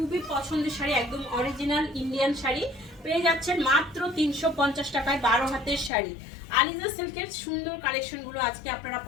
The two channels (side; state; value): right; drops out; at 5.9 s